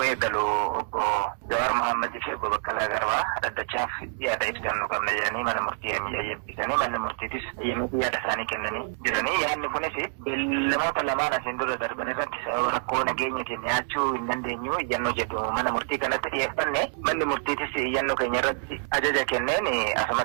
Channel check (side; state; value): left; silent; digital silence